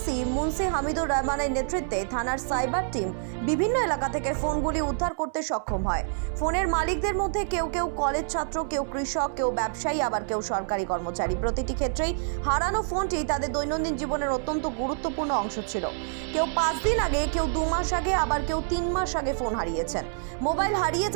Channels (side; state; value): left; silent; 59 dB below the other